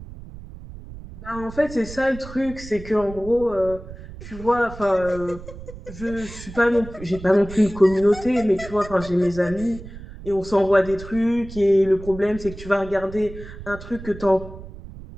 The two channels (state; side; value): noise; right; rumble, 14 dB below the sound